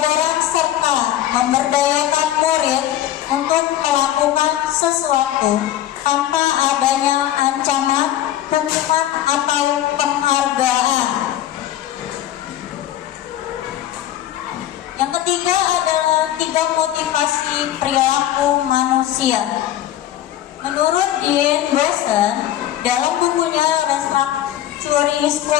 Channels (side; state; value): right; quieter; 12.5 dB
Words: serta memberdayakan murid untuk melakukan sesuatu tanpa adanya ancaman, hukuman, atau penghargaan. Yang ketiga adalah 3 motivasi perilaku manusia. Menurut Dean Boson, dalam bukunya Restructuring